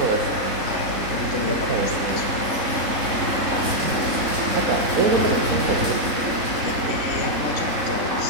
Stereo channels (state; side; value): late; left; 3.6 ms